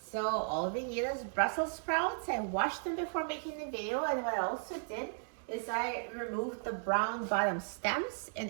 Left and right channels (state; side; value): silent; left; digital silence